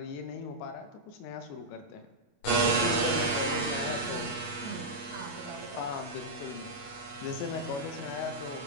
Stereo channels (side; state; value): right; late; 29 ms